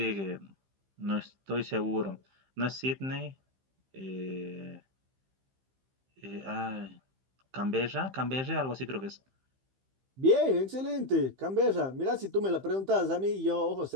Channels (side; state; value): left; late; 15 ms